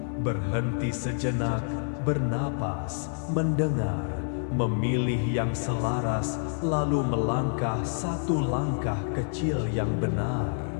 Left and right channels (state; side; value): silent; right; 59 dB below the other